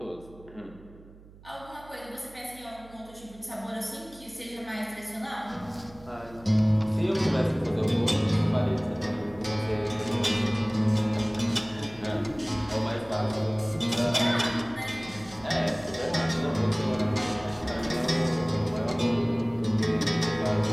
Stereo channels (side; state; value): right; noise; hum, 21 dB below the sound